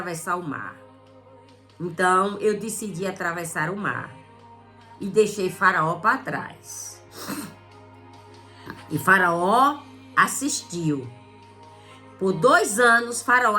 o mar. Então eu decidi atravessar o mar e deixei Faraó para trás. E Faraó assistiu. Por 2 anos, Faraó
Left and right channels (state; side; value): identical; both; correlation 1.00